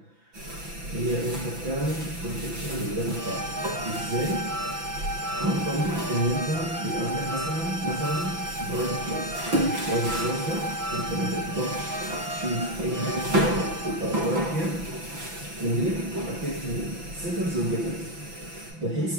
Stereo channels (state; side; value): late; left; 6.0 ms